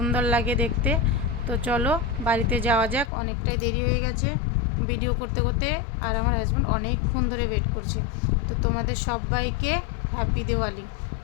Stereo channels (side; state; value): right; drops out; at 3.1 s